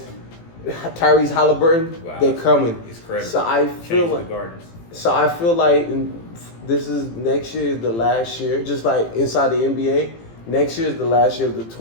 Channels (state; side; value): late; right; 18 ms